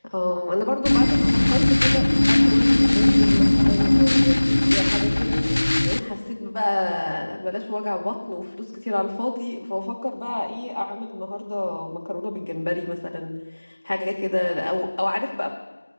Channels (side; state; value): both; inverted; correlation -1.00